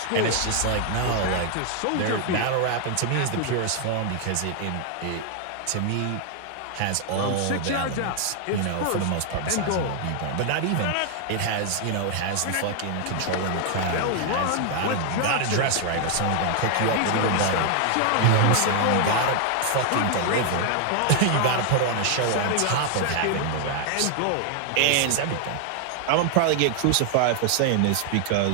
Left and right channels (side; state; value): both; different; correlation 0.00